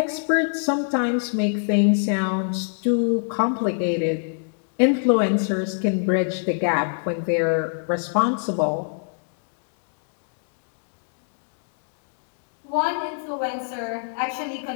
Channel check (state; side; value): silent; right; digital silence